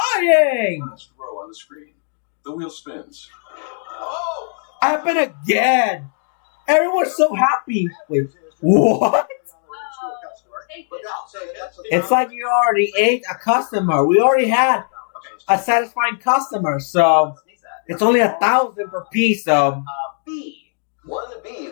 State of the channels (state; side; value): silent; right; 66 dB below the other